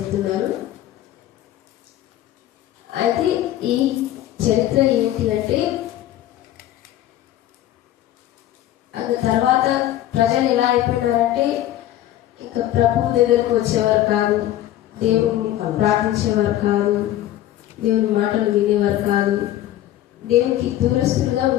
అయితే ఈ చరిత్ర ఏంటి అంటే, అది తర్వాత ప్రజలు ఎలా అయిపోయినారంటే ఇంకా ప్రభు దగ్గరకు వచ్చేవారు కాదు, దేవుని ప్రార్థించేవారు కాదు, దేవుని మాటలు వినేవారు కాదు, దేవునికి దూరస్తులుగా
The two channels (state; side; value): quieter; right; 13.3 dB